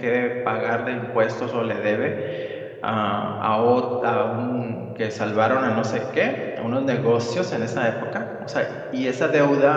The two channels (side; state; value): both; identical; correlation 1.00